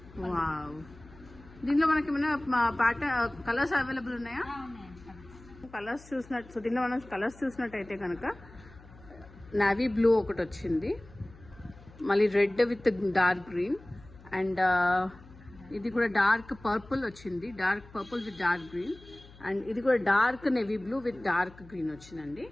వావ్, దీనిలో మనకి ఏమైనా ప్యాటర్న్ కలర్స్ అవైలబుల్ ఉన్నాయా? కలర్స్ చూసినట్టు, సో దీనిలో మనం కలర్స్ చూసినట్టయితే కనుక నావీ బ్లూ ఒకటి వచ్చింది, మళ్ళీ red with dark green and ఇది కూడా డార్క్ పర్పుల్ వచ్చింది, dark purple with dark green and ఇది కూడా dark navy blue with dark green వచ్చిందండి.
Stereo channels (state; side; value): noise; left; hum, 21 dB below the sound